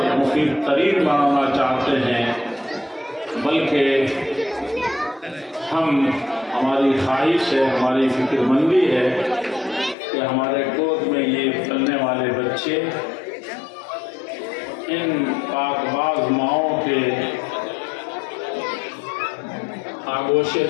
مفید ترین بنانا چاہتے ہیں، بلکہ ہماری خواہش ہے، ہماری فکر مندی ہے کہ ہمارے گود میں یہ پلنے والے بچے ان پاک باز ماؤں کے آغوش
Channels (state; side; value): drops out; right; at 10.0 s